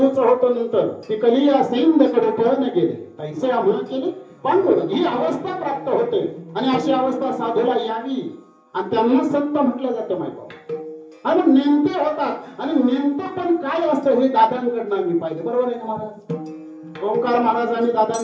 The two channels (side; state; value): both; identical; correlation 1.00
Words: होतं. नंतर ती कलिया सैन्यकडे पळून गेले, तैसे आम्हा केले पांडुर. ही अवस्था प्राप्त होते आणि अशी अवस्था साधूला यावी आणि त्यांना संत म्हटलं जातं माहिती. आणि नेमते होतात आणि नेमतं पण काय असतं हे दादांकडनं आम्ही पाहिजे. बरोबर आहे ना महाराज? ओंकार महाराज आणि